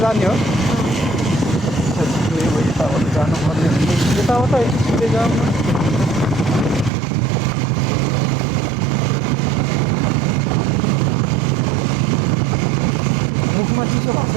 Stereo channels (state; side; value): drops out; left; at 6.9 s